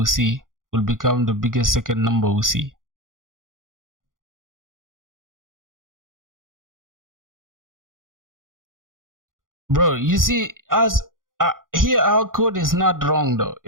see, will become the biggest second number we see. Bro, you see, as here our code is not wrong though.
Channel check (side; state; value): left; late; 0.90 ms